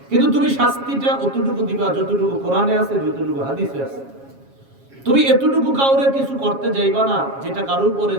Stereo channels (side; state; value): left; late; 7.3 ms